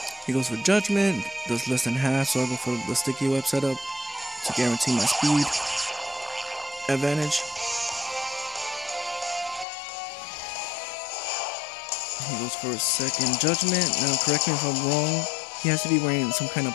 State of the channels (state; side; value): drops out; right; at 9.7 s